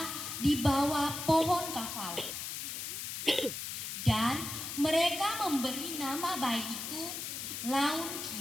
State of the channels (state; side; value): noise; left; hiss, 5 dB below the sound